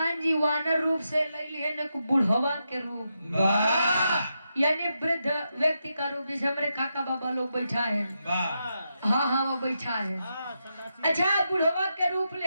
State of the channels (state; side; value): inverted; both; correlation -0.85